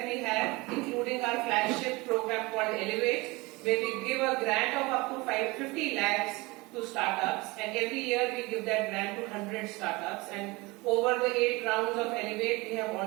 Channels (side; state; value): left; quieter; 23.6 dB